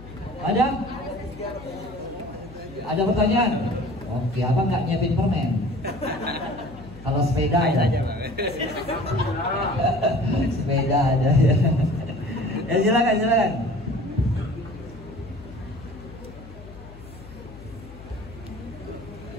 Ada? Ada pertanyaan? Oke, abang nggak nyiapin permen. Kalau sepeda ada. Sepeda ada ya. Ya silakan, silakan.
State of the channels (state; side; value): noise; left; hum, 17 dB below the sound